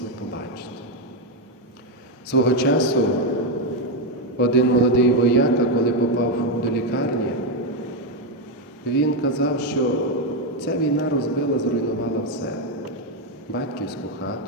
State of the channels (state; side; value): normal; both; correlation 0.05